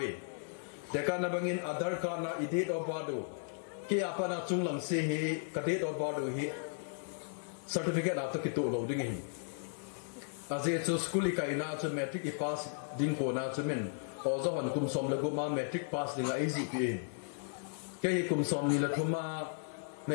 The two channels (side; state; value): right; silent; 54 dB below the other